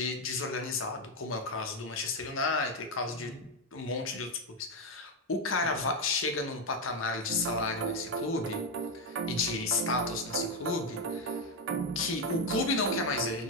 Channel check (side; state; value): both; normal; correlation 0.07